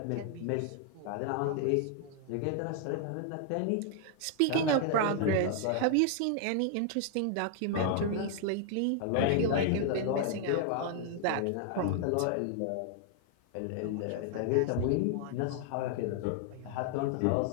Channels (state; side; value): different; both; correlation 0.00